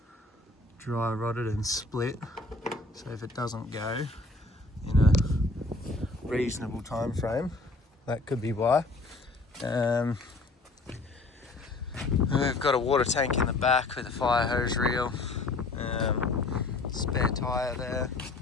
dry rotted and split. So if it doesn't go in a reasonable time frame, that could be why. We've got a water tank in the back with a fire hose reel, spare tyre there.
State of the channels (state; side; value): quieter; right; 3.2 dB